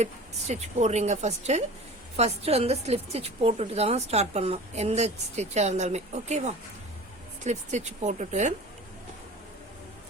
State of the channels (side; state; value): both; normal; correlation 0.38